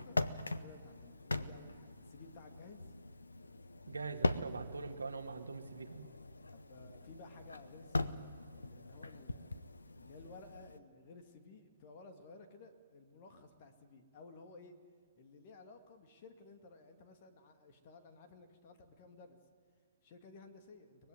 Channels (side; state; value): both; inverted; correlation -0.89